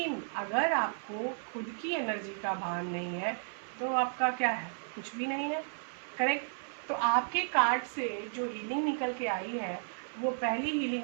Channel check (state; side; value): silent; left; 55 dB below the other